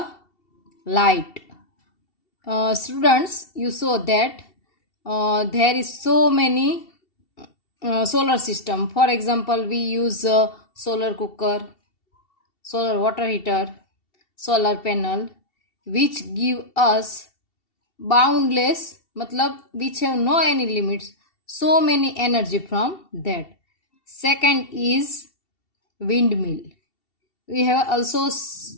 light. Students, you saw that there is so many solar system. For example, we use solar cooker, solar water heater, solar panel, which give us boundless matlab which have no any limits, so many energy from that. Second is windmill. We have also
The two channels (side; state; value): right; late; 2.7 ms